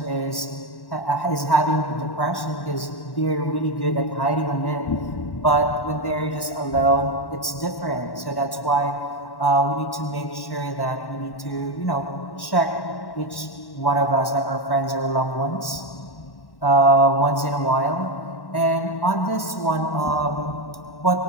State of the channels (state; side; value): late; right; 1.1 ms